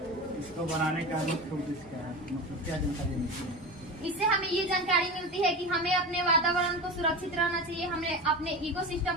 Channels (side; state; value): both; normal; correlation 0.26